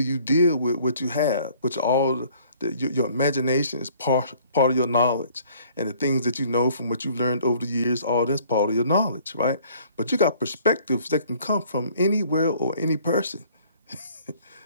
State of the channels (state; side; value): inverted; both; correlation -0.57